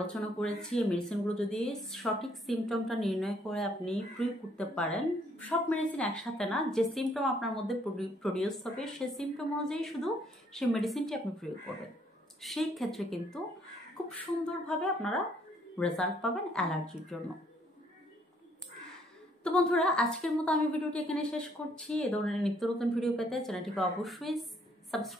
করেছি, এই মেডিসিনগুলো যদি সঠিক সিমটমটা নির্ণয় করে আপনি প্রয়োগ করতে পারেন, সব মেডিসিন একসাথে না, যে সিমটম আপনার মধ্যে প্রডিউস হবে সেই সিমটম অনুযায়ী শুধু সেই মেডিসিনটি আপনি প্রয়োগ করবেন, সেই ক্ষেত্রে কিন্তু খুব সুন্দরভাবে আপনারা রেজাল্ট পাবেন অ্যালার্জির জন্য। তো বন্ধুরা, আজকের মতো আমি ভিডিওটি এখানে শেষ করছি। এ ধরনের নিত্য নতুন ভিডিও পেতে চ্যানেলটিকে অবশ্যই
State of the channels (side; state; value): both; normal; correlation 0.67